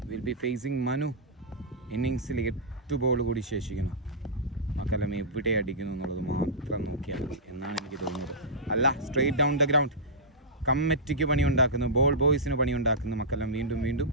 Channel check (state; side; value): normal; both; correlation -0.14